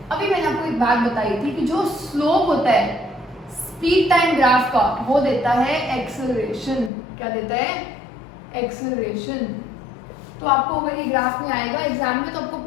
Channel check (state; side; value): drops out; right; at 6.9 s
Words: अभी मैंने आपको एक बात बताई थी कि जो स्लोप होता है स्पीड टाइम ग्राफ का, वो देता है एक्सेलरेशन। क्या देता है, एक्सेलरेशन। तो आपको अगर ये ग्राफ में आएगा एग्जाम में, तो आपको